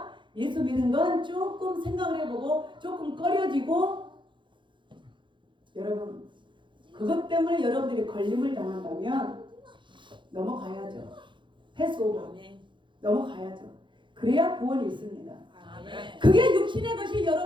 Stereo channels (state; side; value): late; left; 0.23 ms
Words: 예수 믿는 건 조금 생각을 해보고 조금 꺼려지고 여러분 그것 때문에 여러분들이 걸림을 당한다면 넘어가야죠. 패스오버 넘어가야죠. 그래야 구원이 있습니다. 그게 육신의 것이